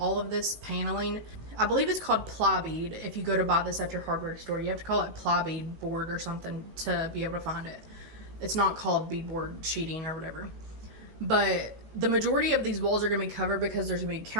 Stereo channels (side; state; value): left; late; 19 ms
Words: of this paneling, I believe it's called ply bead. If you go to buy this at your hardware store, you have to call it ply bead board or something to be able to find it. It's not called beadboard sheeting or whatever. But the majority of these walls are going to be covered because there's going to be